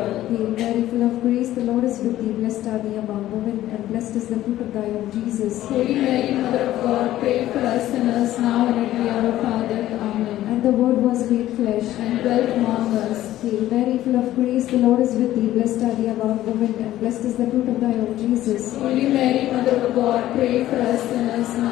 Hail Mary, full of grace, the Lord is with thee. Blessed are thee among women, and blessed is the fruit of thy womb, Jesus. Holy Mary, Mother of God, pray for us sinners now and at the hour of our death. Amen. And the Word was made flesh, And dwelt among us. Hail Mary, full of grace, the Lord is with thee. Blessed are thee among women, and blessed is the fruit of thy womb, Jesus. Holy Mary, Mother of God, pray for us sinners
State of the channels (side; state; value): right; quieter; 14.1 dB